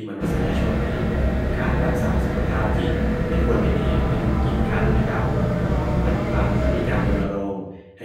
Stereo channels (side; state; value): both; identical; correlation 1.00